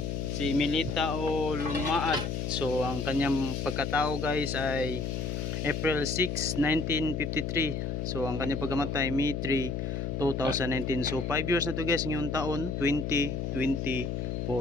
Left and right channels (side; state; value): left; noise; hum, 2 dB below the sound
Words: Si Milita o Lumaad. So, ang kanyang pagkatao guys ay April 6, 1953. So, ang kanyang pagkamatay May 3, 2019. So, 5 years na to guys ngayong taon,